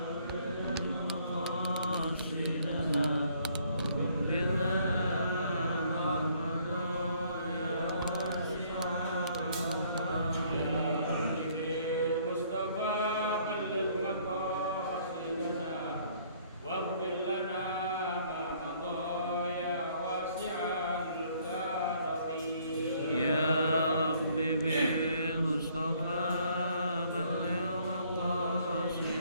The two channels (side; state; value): both; inverted; correlation -0.62